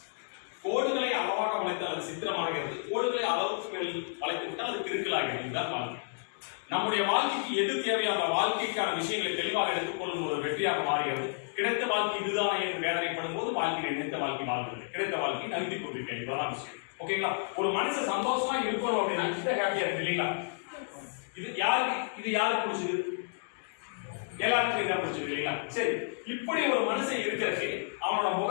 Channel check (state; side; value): silent; right; digital silence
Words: கோடுகளை அளவாக வளைத்தால் அது சித்திரமாகிறது, கோடுகளை அளவுக்கு மேல் வளைத்து விட்டால் அது கிறுக்கலாகிறது. இதுதான் வாழ்க்கை. நம்முடைய வாழ்க்கைக்கு எது தேவையான வாழ்க்கைக்கான விஷயங்களை தெளிவாக எடுத்துக்கொள்ளும் ஒரு வெற்றியாக மாறுகிறது. கிடைத்த வாழ்க்கை இதுதானே என்று வேதனைப்படும் போது வாழ்க்கை நினைத்த வாழ்க்கை வாழ்கிறது, கிடைத்த வாழ்க்கை நகர்த்தி கொண்டிருக்கேன். இதுதான் விஷயம். ஓகேங்களா? ஒரு மனுஷன் சந்தோஷமா இருக்கணும் அப்படின்னா கிட்ட ஹாப்பியா இருக்கு இல்லைங்களா? இது யாருக்கு பிடிச்சது? எல்லாருக்கும் இதான் பிடிச்சது இல்லைங்களா? சரி, இப்படி ஒரு மனுஷன் இருக்கிறதுக்கு அவனோட